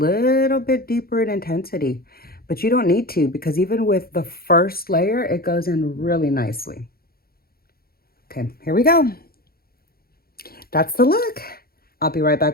bit deeper in intensity. But you don't need to because even with the first layer, it goes in really nicely. Okay, here we go. That's the look. I'll be right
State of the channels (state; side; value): late; right; 0.44 ms